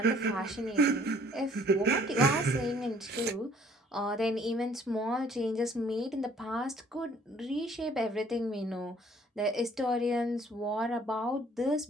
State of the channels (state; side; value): normal; both; correlation 0.59